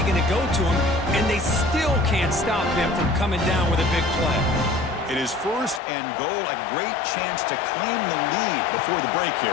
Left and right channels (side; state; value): right; drops out; at 5.8 s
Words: going to go to him, and they still can't stop him from coming down with a big play. It is first and goal. A great chance to claim the lead before the break